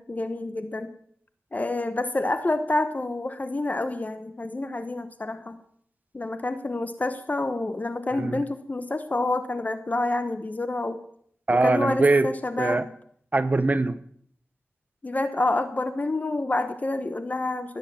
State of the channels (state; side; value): normal; both; correlation 0.90